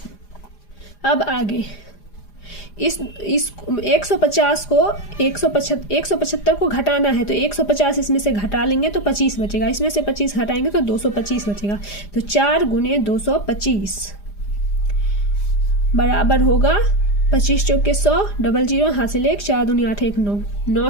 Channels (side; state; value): right; late; 4.9 ms